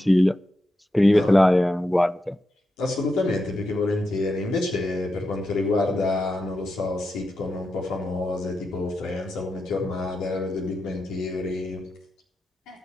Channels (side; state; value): both; normal; correlation 0.88